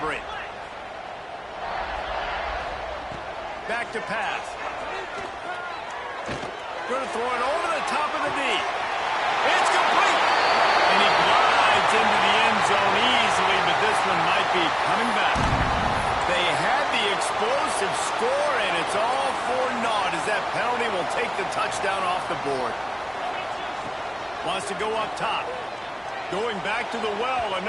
break. Back to pass. Going to throw it over the top of the D. It's complete. And he glides into the end zone easily, but this one might be coming back. They had the explosive score, and it's all for naught as that penalty will take the touchdown off the board. Wants to go up top. Going back to the well,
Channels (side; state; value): both; identical; correlation 1.00